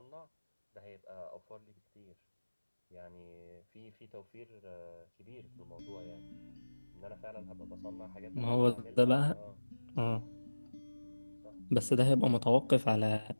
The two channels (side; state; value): both; inverted; correlation -1.00